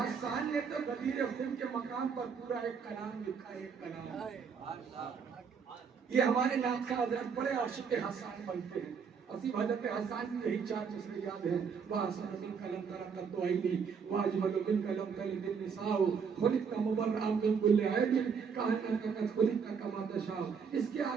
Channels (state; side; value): quieter; left; 6.2 dB